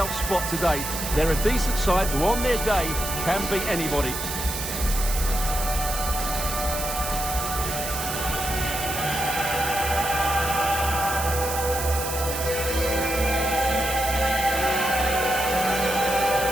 spot today. They're a decent side who on their day can beat anybody.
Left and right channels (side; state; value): right; noise; hiss, 5 dB below the sound